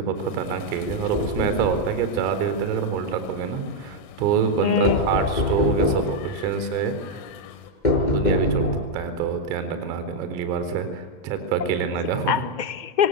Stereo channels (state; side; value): late; right; 2.1 ms